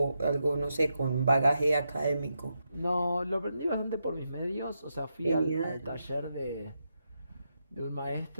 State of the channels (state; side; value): inverted; both; correlation -0.85